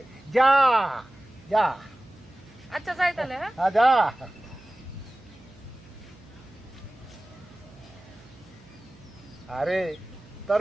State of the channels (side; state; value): right; noise; hum, 25 dB below the sound